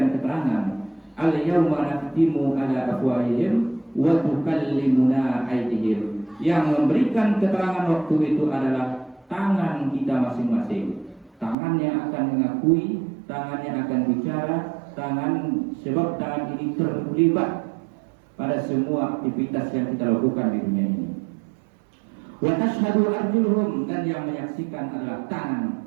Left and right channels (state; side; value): drops out; left; at 11.6 s